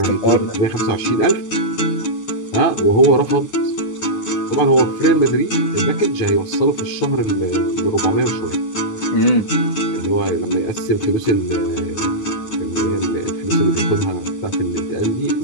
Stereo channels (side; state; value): right; late; 9.6 ms